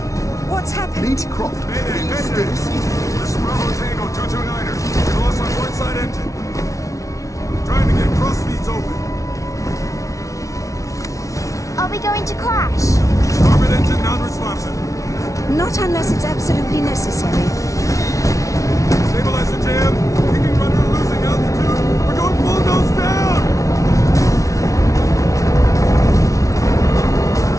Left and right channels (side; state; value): right; late; 0.16 ms